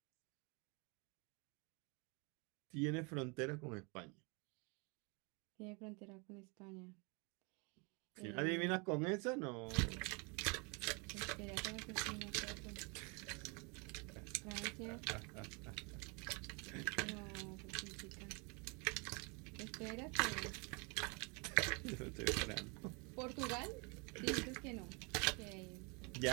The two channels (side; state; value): left; quieter; 31.7 dB